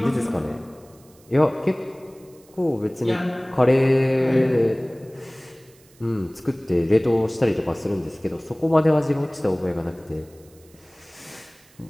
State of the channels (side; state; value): right; noise; hiss, 28 dB below the sound